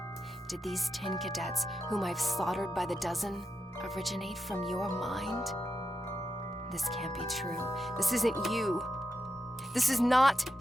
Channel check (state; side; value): normal; both; correlation 0.87